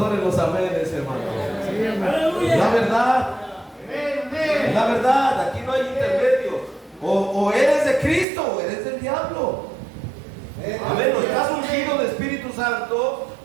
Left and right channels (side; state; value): left; drops out; at 8.2 s